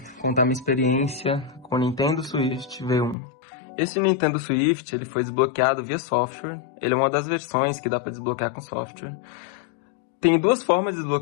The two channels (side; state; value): right; drops out; at 3.2 s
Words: contar minha experiência com o Nintendo Switch V1. Esse Nintendo Switch ele foi desbloqueado via software, ele é uma das versões que dá para desbloquear com software. Tem duas formas de